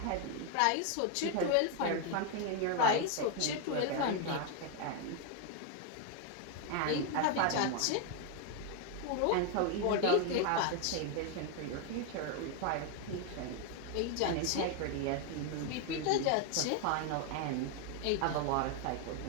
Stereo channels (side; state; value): both; different; correlation 0.01